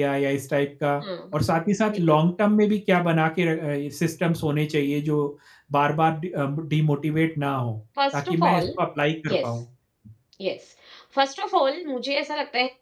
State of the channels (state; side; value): identical; both; correlation 1.00